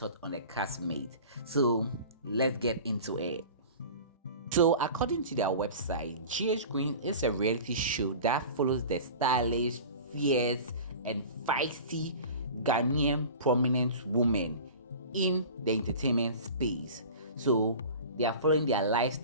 on the castmate. So let's get into it. So, according to their website, GH Queen is a reality show that follows the stylish, fierce, and feisty Ghanaian prominent women in the entertainment space. So, they are following their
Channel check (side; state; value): both; inverted; correlation -0.38